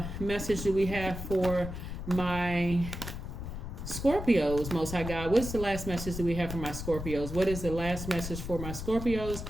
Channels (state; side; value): noise; left; rumble, 7 dB below the sound